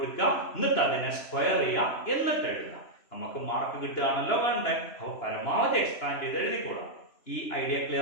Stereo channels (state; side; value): late; right; 2.9 ms